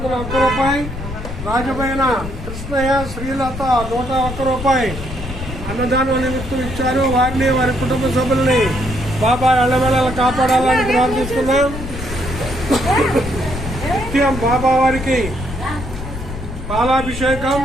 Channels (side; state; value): left; noise; rumble, 8 dB below the sound